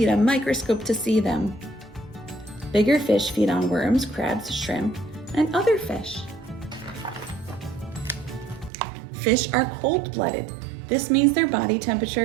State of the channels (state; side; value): drops out; left; at 8.7 s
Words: a microscope to see them. Bigger fish feed on worms, crabs, shrimp, and other fish. Fish are cold-blooded. This means their body